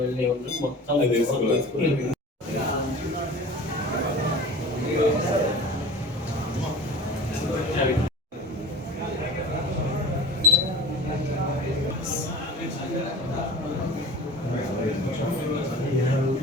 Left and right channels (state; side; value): normal; both; correlation 0.38